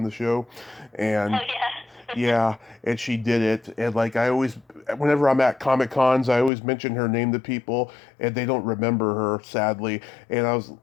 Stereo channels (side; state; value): right; drops out; at 6.5 s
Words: the show, and Oh yeah. yeah, and she did it. And like whenever I'm at Comic Cons, I always mention her name to people, and they don't remember her, sadly. And